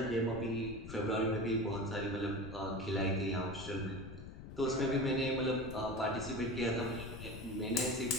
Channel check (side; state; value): left; noise; rumble, 11 dB below the sound